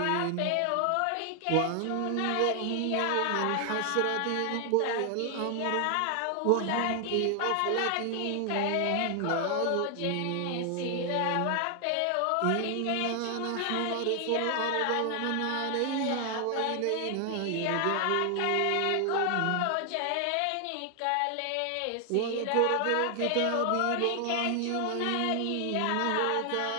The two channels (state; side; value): different; both; correlation 0.00